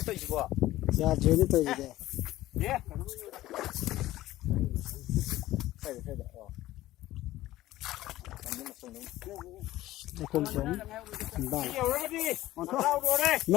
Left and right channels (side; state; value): right; quieter; 15.7 dB